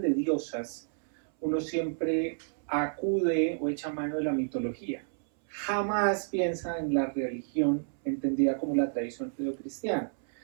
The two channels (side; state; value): left; silent; 58 dB below the other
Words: diosas, uno siempre acude o echa mano de la mitología. Jamás piensa en la religión entendida como la tradición judeocristiana.